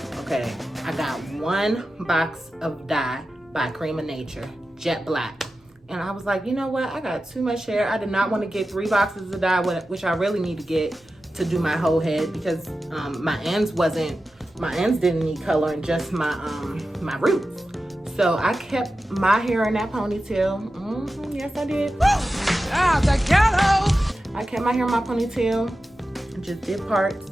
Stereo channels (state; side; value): normal; both; correlation 0.93